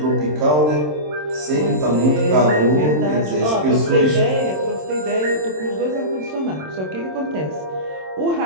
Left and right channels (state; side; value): late; left; 27 ms